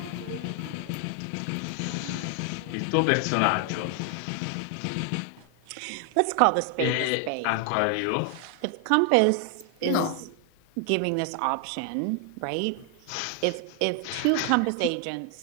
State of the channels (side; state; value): both; different; correlation 0.00